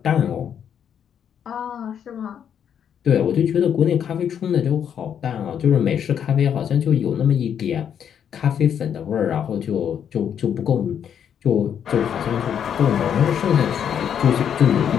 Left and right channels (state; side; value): quieter; right; 8.6 dB